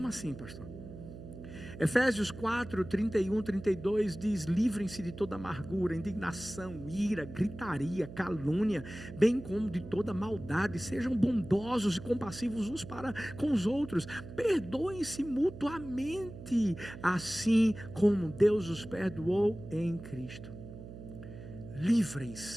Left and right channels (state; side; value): noise; right; hum, 13 dB below the sound